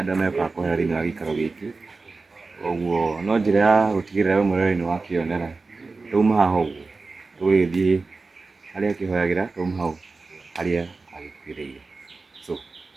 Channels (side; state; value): left; quieter; 3.9 dB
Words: megũkaga kũhoera thĩinĩ wa gĩikaro gĩkĩ. Ũguo no njĩra ya gũtigĩrĩra we mwenyewe nĩ wakĩonera. Twauma haha ũguo tũgĩthiĩ harĩa akĩhoyagĩra, twauma hau harĩa agĩkuĩrĩire. So